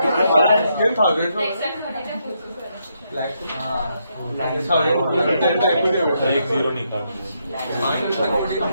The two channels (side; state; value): both; inverted; correlation -0.78